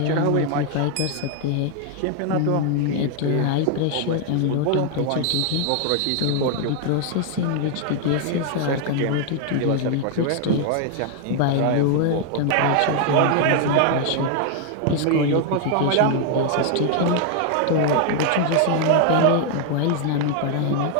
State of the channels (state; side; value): different; both; correlation 0.00